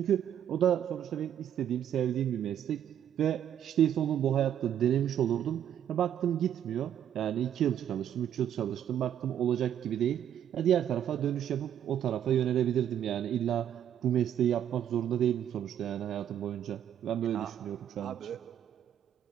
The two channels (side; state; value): left; quieter; 10.1 dB